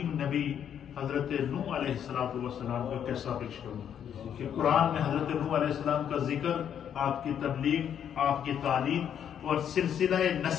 نبی حضرت نوح علیہ السلام کا قصہ پیش کروں کہ قرآن میں حضرت نوح علیہ السلام کا ذکر، آپ کی تبلیغ، آپ کی تعلیم اور سلسلہ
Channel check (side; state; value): right; quieter; 9.0 dB